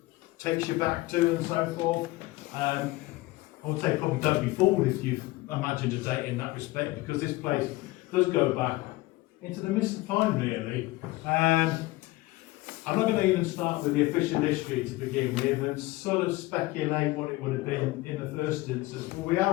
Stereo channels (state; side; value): quieter; right; 19.9 dB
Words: takes you back to and so forth. I would say probably don't be fooled if you've imagined a date in that respect, because this place does go back into the mist of time, really. I'm not going to even start with the official history to begin with and sort of speculate what it would have been in the first instance. Well, we